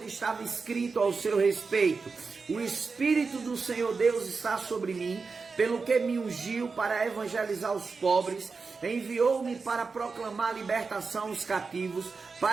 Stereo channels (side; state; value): left; quieter; 4.6 dB